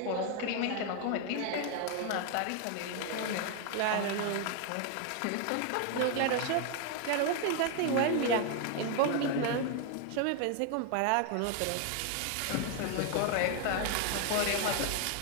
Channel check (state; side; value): different; both; correlation 0.01